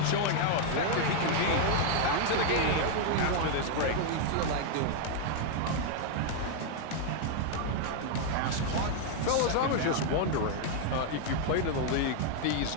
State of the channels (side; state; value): both; different; correlation 0.00